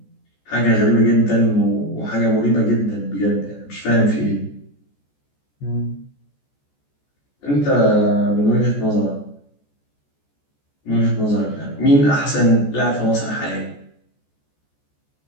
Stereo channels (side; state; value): right; late; 14 ms